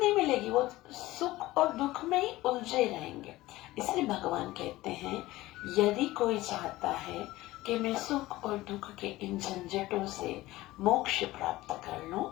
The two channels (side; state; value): right; quieter; 17.8 dB